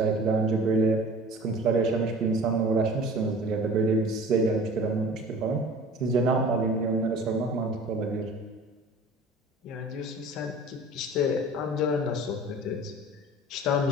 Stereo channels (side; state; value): both; normal; correlation 0.43